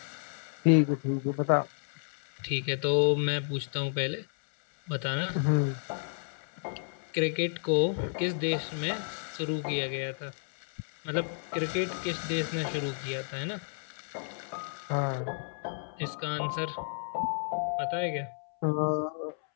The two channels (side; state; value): right; silent; 57 dB below the other